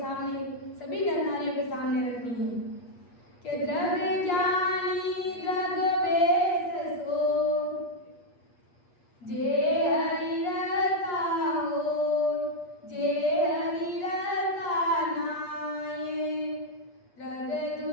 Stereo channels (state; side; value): late; right; 8.3 ms